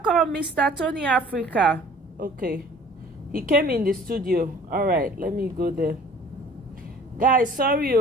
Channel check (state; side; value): normal; both; correlation 0.50